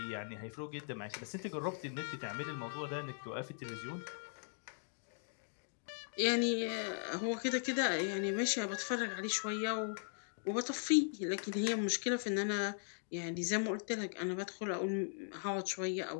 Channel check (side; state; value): right; silent; digital silence